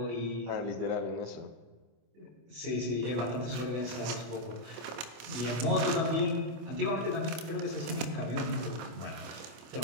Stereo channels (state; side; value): late; left; 26 ms